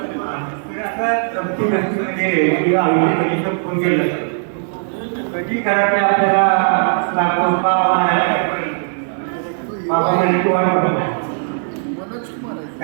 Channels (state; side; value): silent; left; 59 dB below the other